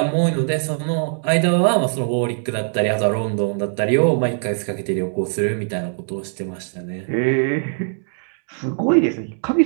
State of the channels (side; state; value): left; silent; 61 dB below the other